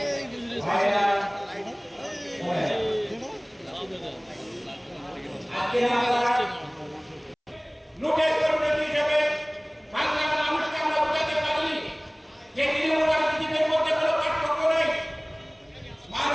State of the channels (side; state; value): both; identical; correlation 1.00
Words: ভাইরা আজকে আমরা লোকের কর্মী হিসেবে বাংলার মানুষকে আমরা বোঝাতে পারিনি যে তৃণমূল রাজনীতির মধ্যে কোনো পার্থক্য নেই।